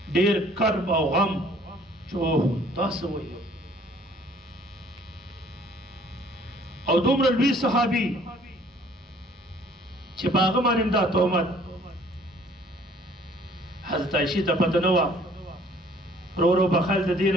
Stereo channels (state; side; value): normal; both; correlation 0.57